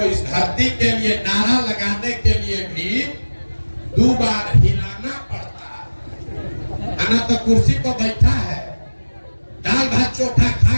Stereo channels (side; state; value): both; inverted; correlation -1.00